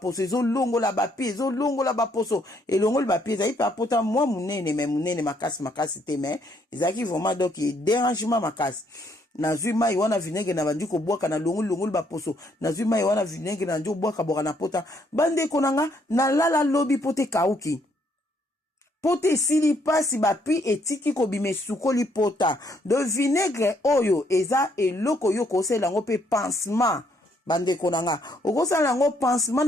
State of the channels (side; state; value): both; normal; correlation 0.70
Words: ezo longola ba pi ezo longola ba poso elongola ba pi ezai pa pota mwa munene makasi te mais ezaki vraiment donc dérangement makasi nazwi mai wana vinaigre na bandiko bwaka na longola ba poso nazwi mai wana vinaigre na njo bwaka boka na pota bandeko nanga na lala lobi pote kauki pote sili pasi bapi etiki kobime sukoli pota de vinaigre oyo eza eloko yo kosela ngo pe pansement bandeko nanga okosala ngo pansement